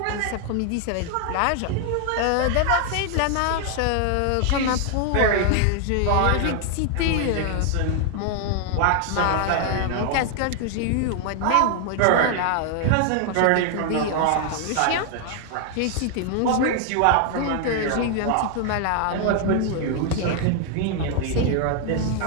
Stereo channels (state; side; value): different; both; correlation 0.00